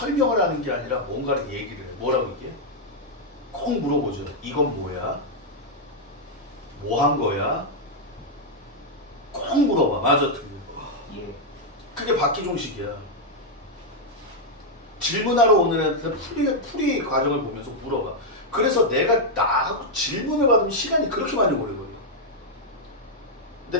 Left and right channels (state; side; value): normal; both; correlation -0.02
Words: 하는 게 아니라 뭔가를 얘기를 해. 뭐라고 이게? 꼭 물어보죠. 이건 뭐야? 뭐 한 거야? 꼭 물어봐. 맞아, 틀려. 예. 그게 박기종식이야. 질문하러 오는 애한테 풀이 과정을 보면서 물어봐. 그래서 내가 나하고 질문을 받으면 시간이 그렇게 많이 오래걸려.